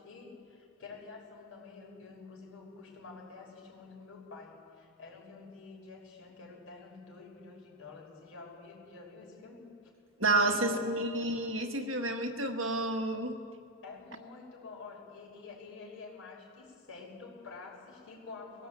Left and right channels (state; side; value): normal; both; correlation 0.02